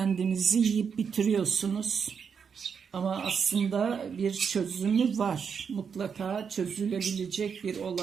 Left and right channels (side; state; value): left; quieter; 6.6 dB